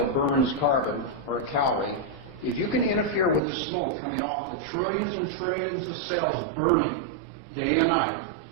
burns carbon, or a calorie. If you can interfere with the smoke coming off the trillions and trillions of cells burning day and night,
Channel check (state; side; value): drops out; left; at 3.4 s